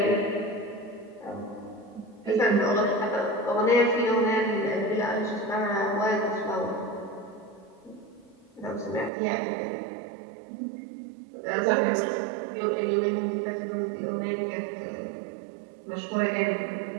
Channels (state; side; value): drops out; left; at 9.1 s